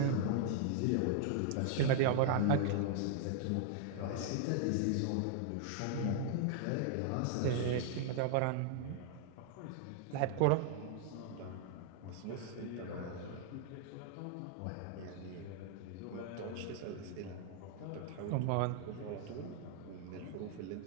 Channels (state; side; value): different; both; correlation 0.00